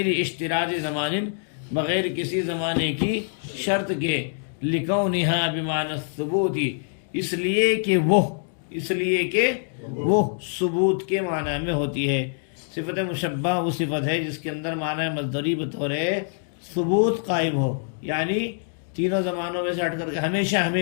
اشتراط زمان، بغیر کسی زمانے کی شرط کے۔ لِكَوْنِهَا بِمَعْنَى الثُّبُوتِ، اس لیے کہ وہ ثبوت کے معنی میں ہوتی ہے۔ صفت مشبہ وہ صفت ہے جس کے اندر معنی مصدری بطور ثبوت قائم ہو، یعنی تینوں زمانوں میں سے ہٹ کر کے ہمیشہ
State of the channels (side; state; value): right; silent; digital silence